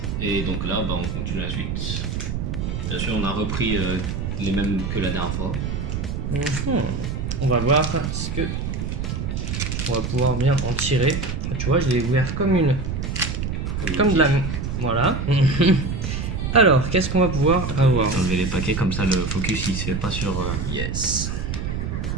et donc là on continue la suite. Bien sûr on a repris les mêmes que la dernière fois. On va voir ce que on va pouvoir bien en tirer. Tu vois, je l'ai ouvert comme de la... Voilà. Alors, qu'est-ce qu'on va pouvoir avoir? Enlever les paquets comme ça le focus il se fait pas sur... Yes.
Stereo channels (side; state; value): right; noise; rumble, 3 dB below the sound